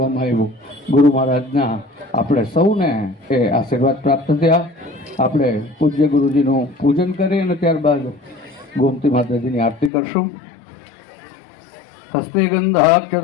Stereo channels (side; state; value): right; drops out; at 9.9 s